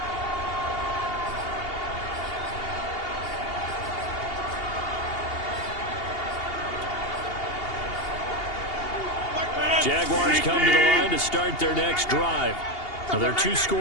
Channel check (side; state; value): right; late; 2.8 ms